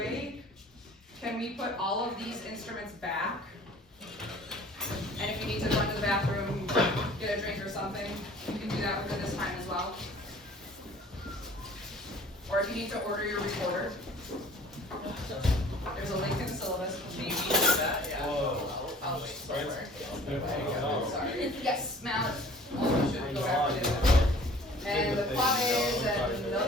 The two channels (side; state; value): both; normal; correlation 0.49